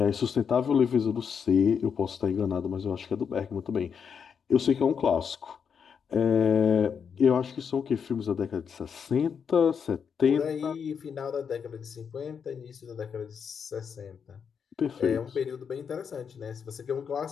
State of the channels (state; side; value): quieter; right; 6.8 dB